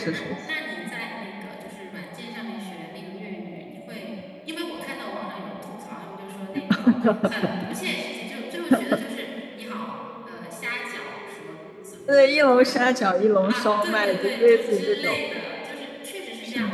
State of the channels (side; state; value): both; identical; correlation 1.00